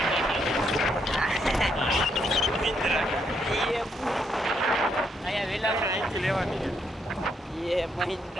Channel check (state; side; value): normal; both; correlation 0.75